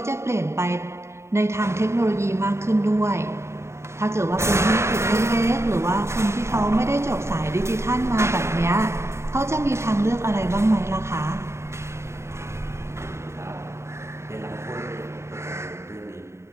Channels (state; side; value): late; left; 0.13 ms